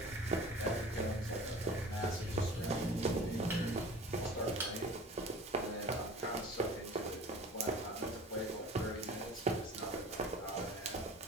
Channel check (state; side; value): normal; both; correlation 0.42